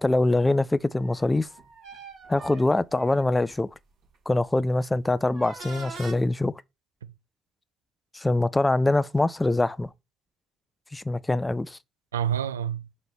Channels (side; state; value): both; normal; correlation 0.92